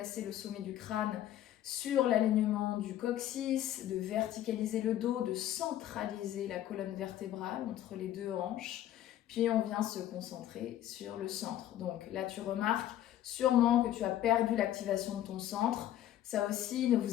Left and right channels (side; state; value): right; quieter; 12.3 dB